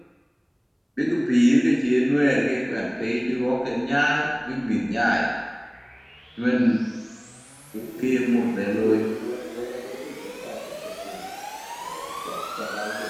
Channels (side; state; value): both; identical; correlation 1.00